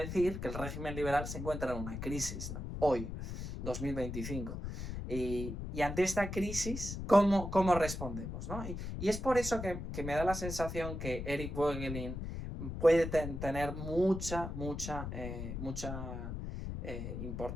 que el régimen liberal se encuentra en una crisis, ¿no? Hoy, 2025. Y ante esta crisis, ¿cómo respondemos? ¿No? Y es por eso que me da la sensación que Eric Voegelin puede tener mucha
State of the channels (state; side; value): noise; left; rumble, 6 dB below the sound